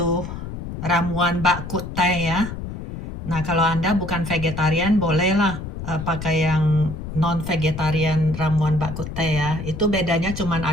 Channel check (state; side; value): noise; left; rumble, 8 dB below the sound